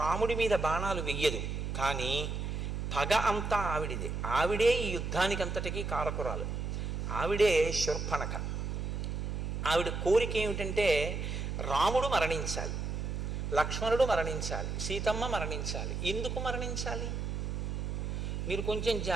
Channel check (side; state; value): right; noise; hum, 3 dB below the sound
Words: రాముడి మీద బాణాలు వెయ్యదు, కానీ పగ అంతా ఆవిడిదే. ఆవిడే ఈ యుద్ధానికి అంతటికీ కారకురాలు. ఆవిడే శూర్పణఖ. ఆవిడ కోరిక ఏమిటంటే రాముడు మరణించాలి, లక్ష్మణుడు మరణించాలి, సీతమ్మ మరణించాలి. ఎందుకు మరణించాలి? మీరు కొంచెం